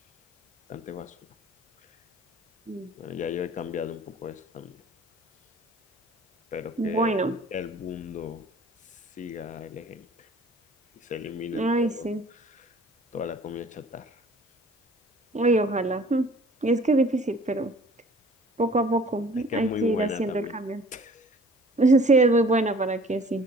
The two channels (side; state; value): both; normal; correlation 0.51